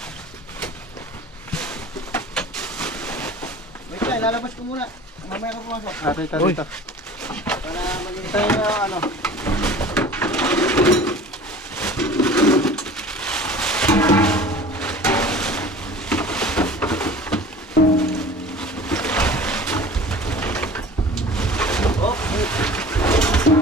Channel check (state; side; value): normal; both; correlation 0.42